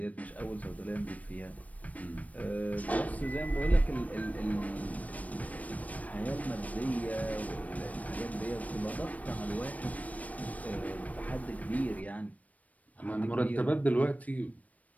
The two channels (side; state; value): right; late; 0.070 ms